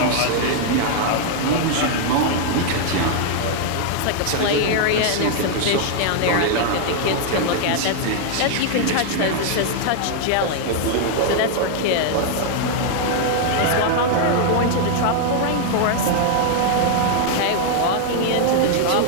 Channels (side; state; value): both; different; correlation 0.00